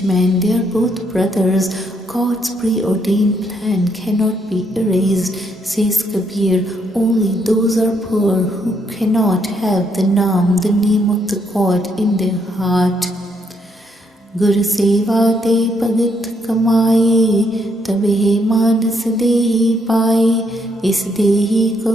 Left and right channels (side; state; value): both; normal; correlation 0.74